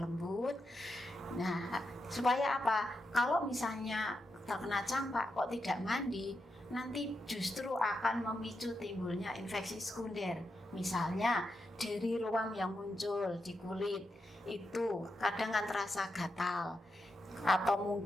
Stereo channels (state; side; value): normal; both; correlation 0.86